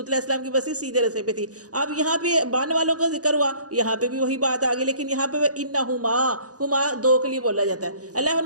علیہ السلام کی بستی سیدھے راستے پہ تھی. اب یہاں پہ بان والوں کا ذکر ہوا، یہاں پہ بھی وہی بات آ گئی، لیکن یہاں پہ وَإِنَّهُمَا، ہما دو کے لیے بولا جاتا ہے. اللہ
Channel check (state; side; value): late; left; 0.67 ms